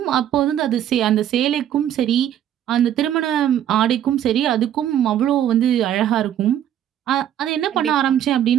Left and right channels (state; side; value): quieter; left; 10.7 dB